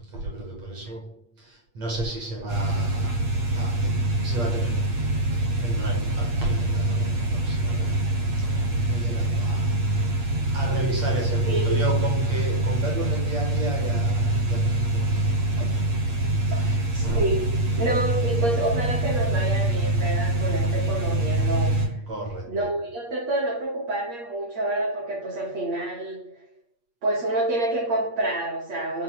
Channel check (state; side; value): late; left; 8.5 ms